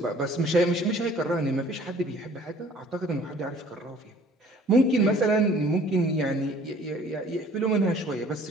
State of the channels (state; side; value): normal; both; correlation 0.53